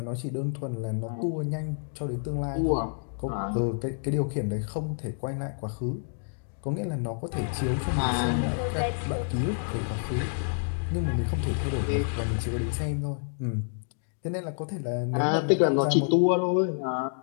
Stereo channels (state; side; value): silent; right; digital silence